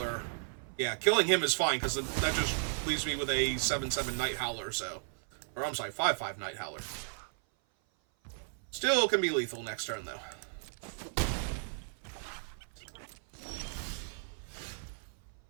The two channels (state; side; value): silent; left; 55 dB below the other